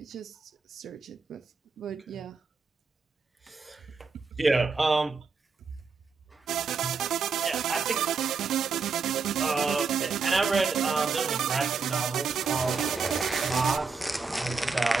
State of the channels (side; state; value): left; quieter; 4.9 dB